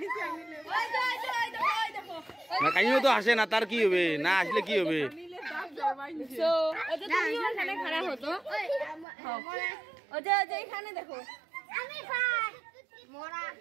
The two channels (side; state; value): left; drops out; at 9.1 s